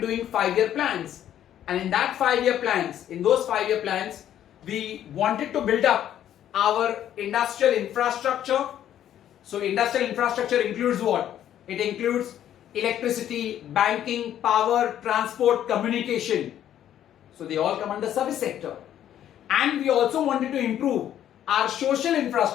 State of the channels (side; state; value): right; quieter; 11.0 dB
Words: 5-year plans, and in that 5-year plans, in those 5-year plans, we wanted to build up our industrial infrastructure. So industrial infrastructure includes what? It includes electricity, banking, power, transport, communication. So they all come under service sector. And we also wanted to improve our social